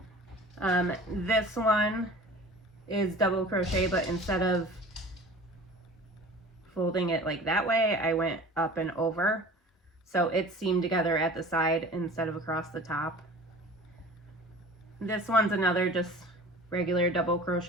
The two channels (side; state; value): both; normal; correlation 0.42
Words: This one is double crochet, but instead of folding it like that way, I went up and over, so it's seamed together at the side instead of across the top. This one's another just regular double